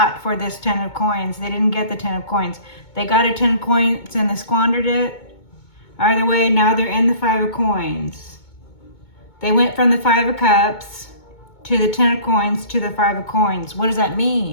for this Ten of Coins. They didn't get the Ten of Coins. They got a 10 of Coins and they squandered it. Either way, now they're in the Five of Coins. They went from the Five of Cups to the 10 of Coins to the Five of Coins. What does that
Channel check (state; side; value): late; right; 2.2 ms